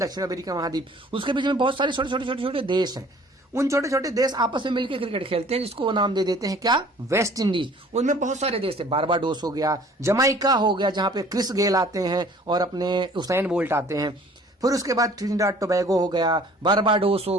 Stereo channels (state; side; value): normal; both; correlation 0.52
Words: अमेरिका महाद्वीप, उसके बीच में बहुत सारे छोटे देश हैं। उन छोटे छोटे देश आपस में मिलकर क्रिकेट खेलते हैं, जिसको वो नाम दे देते हैं क्या, वेस्ट इंडीज। उनमें बहुत सारे देश है, बारबाडोस हो गया, जमाइका हो गया जहां पे क्रिस गेल आते हैं और अपने उसैन बोल्ट आते हैं। फिर उसके बाद ट्रिनिडाड टोबैगो हो गया, बारबाडोस